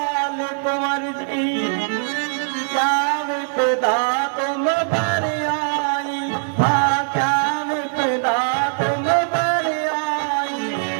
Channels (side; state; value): left; silent; digital silence